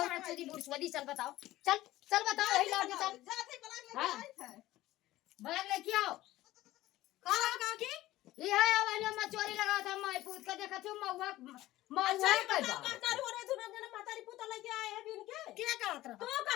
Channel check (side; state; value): right; quieter; 16.2 dB